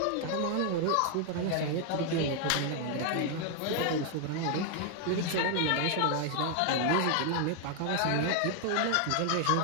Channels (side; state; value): both; different; correlation 0.00